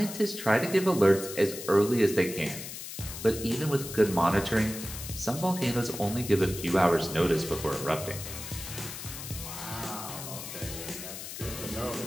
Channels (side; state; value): left; noise; hiss, 9 dB below the sound